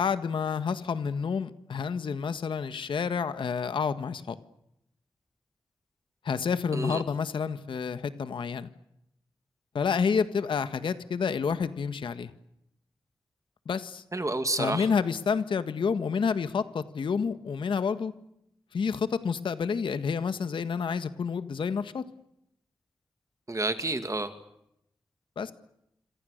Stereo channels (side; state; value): right; quieter; 4.7 dB